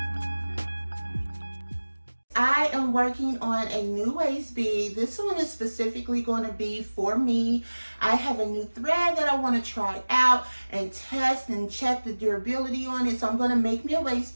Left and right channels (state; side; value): inverted; both; correlation -1.00